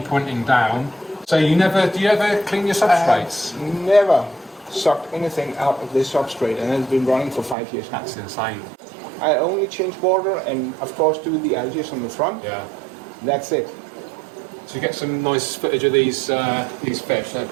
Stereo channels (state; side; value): drops out; left; at 7.6 s